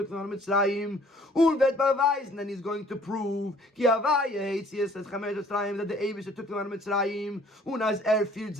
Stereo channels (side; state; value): both; normal; correlation 0.57